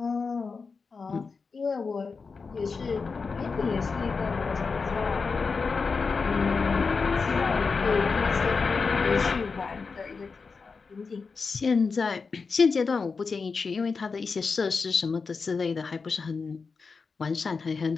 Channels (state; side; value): quieter; right; 4.8 dB